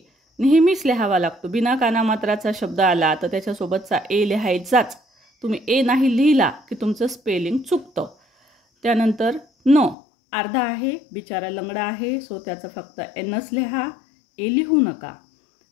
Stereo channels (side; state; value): right; drops out; at 10.0 s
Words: नेहमीच लिहावा लागतो. बिना कानामात्राचा शब्द आला तर त्याच्यासोबतचा ए लिहायचाच. तुम्ही ए नाही लिहिला की तुमचं स्पेलिंग चुकतं. त्यानंतर न, अर्धा आहे, बिचारा लंगडा आहे, सो त्याचं फक्त एनच लिहा, ए लिहू नका.